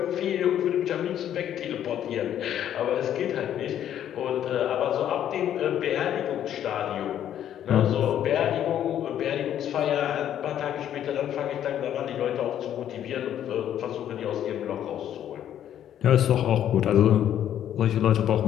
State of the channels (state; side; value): quieter; right; 10.6 dB